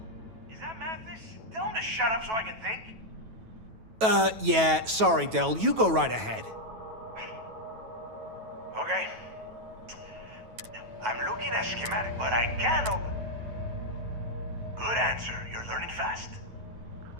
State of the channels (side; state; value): left; late; 9.2 ms